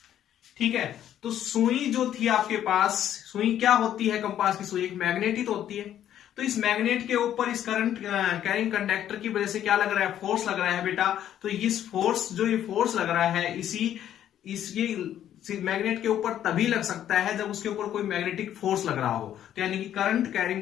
ठीक है, तो सुई जो थी आपके पास, सुई क्या होती है? कंपास की सुई एक मैग्नेट ही तो होती है। तो इस मैग्नेट के ऊपर इस करंट कैरिंग कंडक्टर की वजह से क्या लग रहा है? फोर्स लग रहा है बेटा। तो इस फोर्स, जो ये फोर्स लग रहा है, ये मैग्नेट के ऊपर तभी लग सकता है जब उसके ऊपर कोई मैग्नेटिक फोर्स लग रहा हो। तो यानी कि करंट कैरिंग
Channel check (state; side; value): quieter; right; 10.9 dB